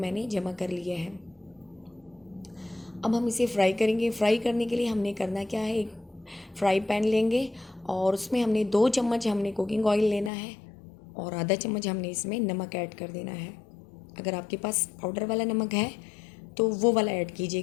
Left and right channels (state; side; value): drops out; right; at 10.3 s